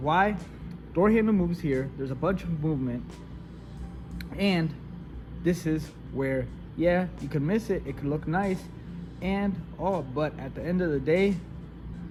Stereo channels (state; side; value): identical; both; correlation 1.00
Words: Door handle moves here. There's a bunch of movement. And this is where, yeah, you can miss it, it could look nice and all, but at the end of the day,